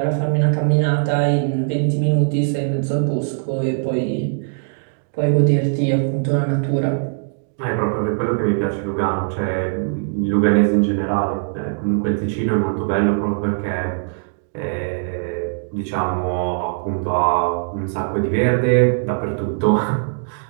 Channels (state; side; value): silent; left; digital silence